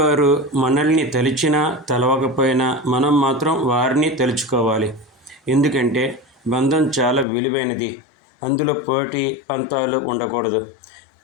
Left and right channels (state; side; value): drops out; right; at 7.2 s